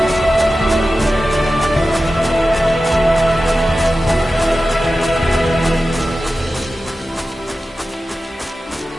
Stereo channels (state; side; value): normal; both; correlation 0.94